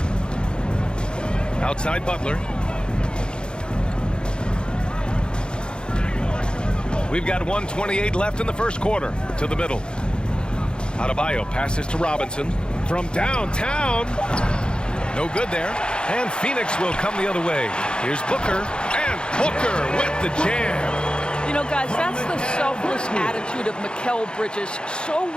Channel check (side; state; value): right; late; 0.051 ms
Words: Outside Butler. We've got 1:28 left in the first quarter. To the middle. Adebayo passes to Robinson. From downtown. No good there. And Phoenix will come the other way. Here's Booker. And Booker with the jam. You know, guys, that's the selfless attitude of Mikal Bridges. So